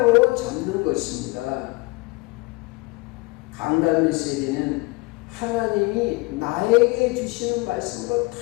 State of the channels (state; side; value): quieter; right; 24.4 dB